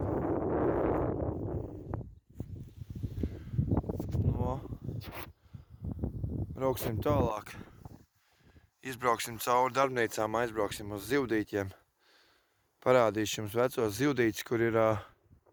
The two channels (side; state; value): both; identical; correlation 1.00